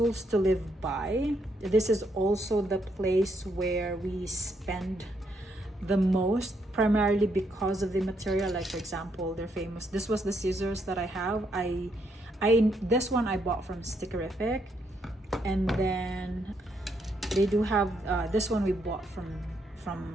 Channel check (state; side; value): normal; both; correlation 0.75